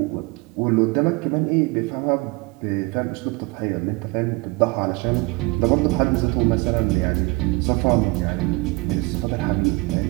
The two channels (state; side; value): quieter; left; 24.8 dB